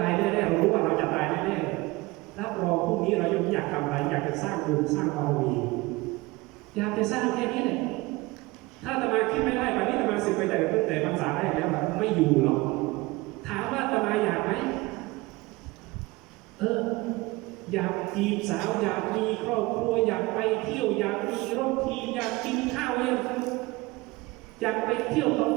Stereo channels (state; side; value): quieter; left; 22.1 dB